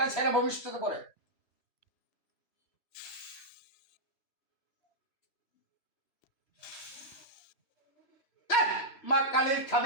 ছেড়ে ভবিষ্যৎ করে। মা কালী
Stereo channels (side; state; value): right; late; 3.0 ms